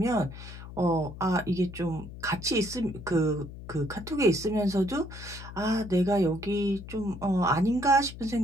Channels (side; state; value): left; noise; hum, 13 dB below the sound